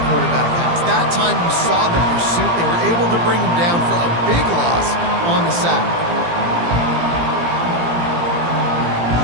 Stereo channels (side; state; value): left; late; 17 ms